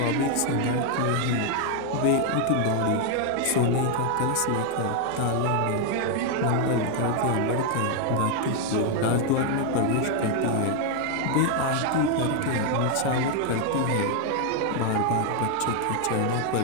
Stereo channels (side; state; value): both; different; correlation 0.01